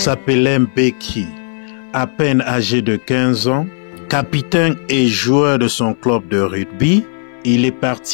Mbeki, à peine âgé de 15 ans, capitaine et joueur de son club de rugby. Il est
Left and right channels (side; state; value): right; silent; 63 dB below the other